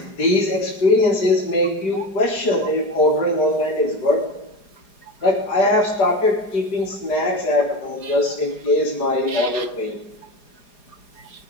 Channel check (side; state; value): right; late; 4.9 ms